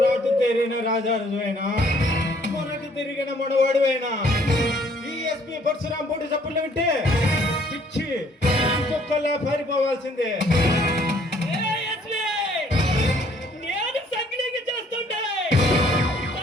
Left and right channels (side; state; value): both; normal; correlation 0.62